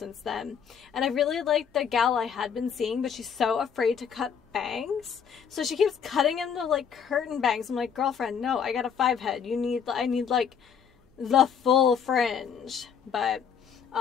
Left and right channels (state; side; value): quieter; right; 7.3 dB